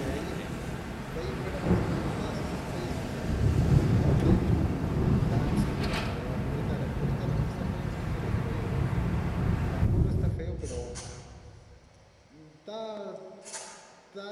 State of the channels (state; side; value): identical; both; correlation 1.00